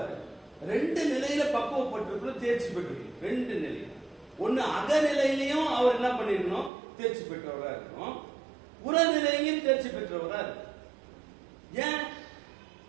2 நிலையில பக்குவப்பட்டிருக்கணும், தேர்ச்சி பெற்றிருக்கணும். 2 நிலை. ஒன்னு அகநிலையிலையும் அவர் என்ன பண்ணிருக்கணும், தேர்ச்சி பெற்றவரா இருக்கணும். புறநிலையிலையும் தேர்ச்சி பெற்றவரா இருக்கணும். ஏன்?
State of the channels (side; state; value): left; drops out; at 6.7 s